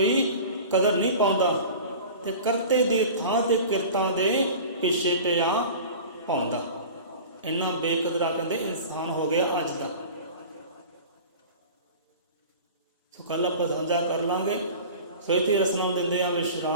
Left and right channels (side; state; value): both; inverted; correlation -0.37